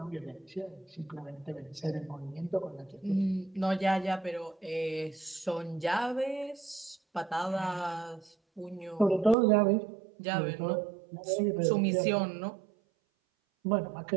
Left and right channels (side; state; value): left; drops out; at 9.3 s